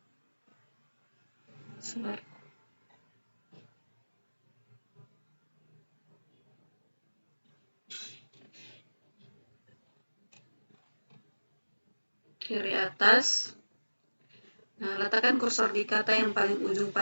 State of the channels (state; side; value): inverted; both; correlation -1.00